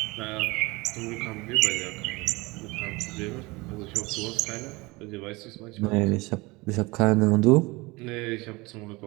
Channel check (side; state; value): left; quieter; 23.7 dB